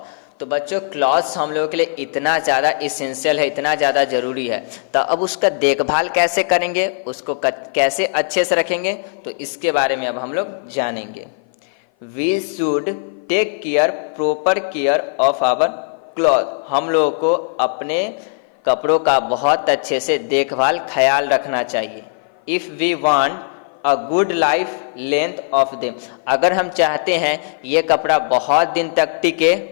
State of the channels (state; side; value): silent; right; 57 dB below the other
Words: तो बच्चों क्लॉथ्स हम लोगों के लिए इतना ज़्यादा इसेंशियल है, इतना ज़्यादा ज़रूरी है, तो अब उसका देखभाल कैसे करेंगे, उसको कैसे अच्छे से रखेंगे, तो इसके बारे में अब हम लोग जानेंगे। We should take care, proper care of our cloth. हम लोगों को अपने कपड़ों का बहुत अच्छे से देखभाल ख्याल रखना चाहिए। If we want a good life length of them. अगर हम चाहते हैं ये कपड़ा बहुत दिन तक टिके,